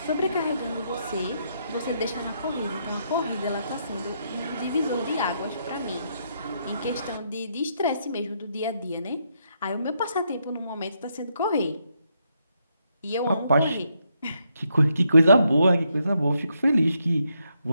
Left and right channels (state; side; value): inverted; both; correlation -0.78